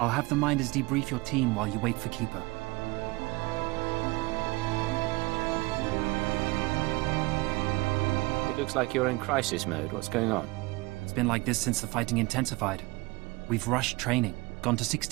I'll have the Minders debrief your team while you wait for Keeper. It looks like you're in crisis mode. What's going on? It's been like this since the fighting intensified. We've rushed training, gone to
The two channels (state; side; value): quieter; left; 22.8 dB